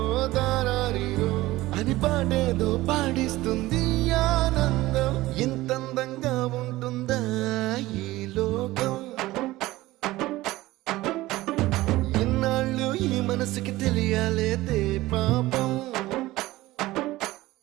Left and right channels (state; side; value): quieter; left; 17.9 dB